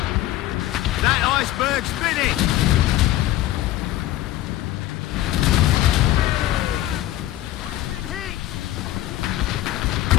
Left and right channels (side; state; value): right; quieter; 14.7 dB